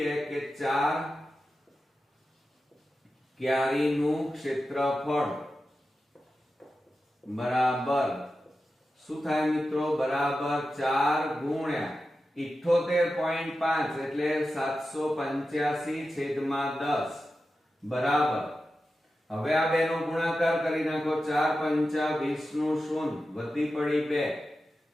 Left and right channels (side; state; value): both; normal; correlation 0.92